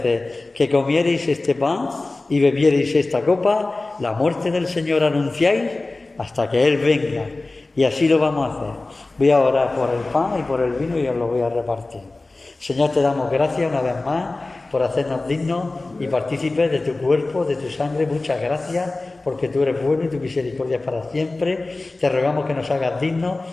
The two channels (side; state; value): right; quieter; 3.2 dB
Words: que comiereis este pan y bebiereis esta copa, la muerte del Señor anunciáis hasta que Él venga. Y así lo vamos a hacer. Voy a orar por el pan y por el vino y os lo voy a repartir. Señor, te damos gracias una vez más por hacernos dignos y partícipes de tu cuerpo, de tu sangre. Muchas gracias, porque tú eres bueno y tu misericordia es para siempre. Te rogamos que nos hagas dignos.